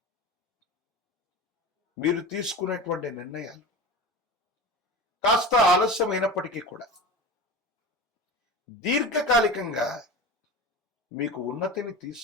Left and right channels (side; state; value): both; normal; correlation 0.30